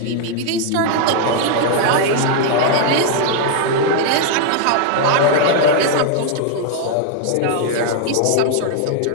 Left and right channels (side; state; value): both; different; correlation 0.00